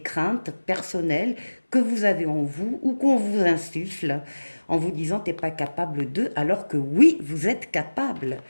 craintes personnelles que vous avez en vous ou qu'on vous insuffle en vous disant t'es pas capable de, alors que oui, vous êtes capable,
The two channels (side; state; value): both; inverted; correlation -1.00